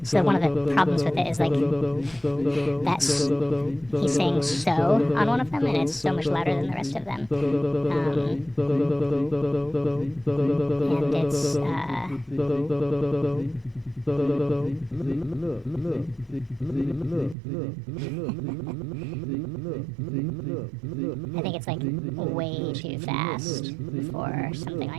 So one of the problems with it is like he's saying so on one of them, and it's so much louder than the rest of them. And it's I think it's like way too fast for something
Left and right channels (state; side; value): drops out; left; at 17.4 s